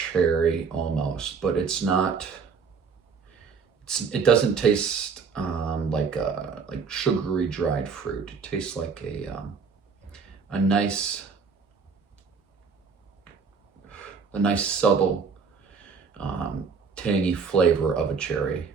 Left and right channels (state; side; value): quieter; left; 5.5 dB